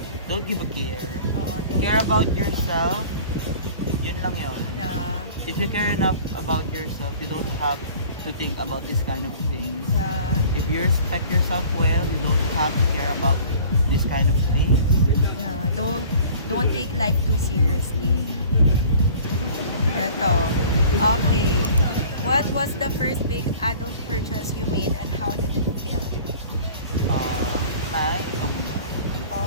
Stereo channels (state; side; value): inverted; both; correlation -0.46